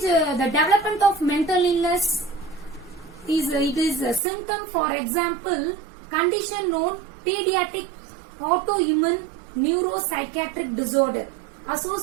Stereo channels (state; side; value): drops out; left; at 4.2 s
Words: the development of mental illness is a symptom. For example, condition known pediatric autoimmune neuropsychiatric disorder